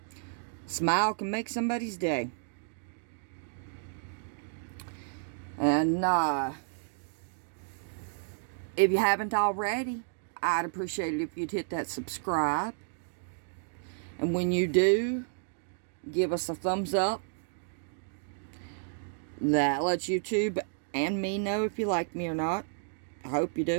Smile can make somebody's day. And if you haven't already, I'd appreciate it if you'd hit that subscribe. And when you do, give us a thumbs up. That lets YouTube and me know if you like me or not. I hope you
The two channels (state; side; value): silent; left; digital silence